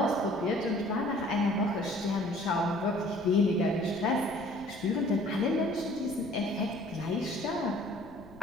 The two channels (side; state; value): left; noise; rumble, 21 dB below the sound